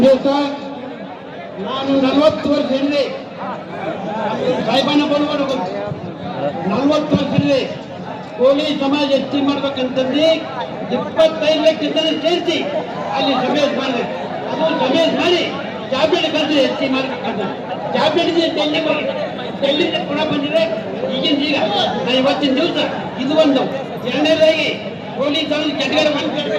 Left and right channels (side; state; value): both; identical; correlation 1.00